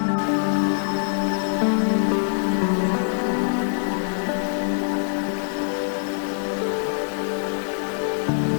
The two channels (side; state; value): right; silent; digital silence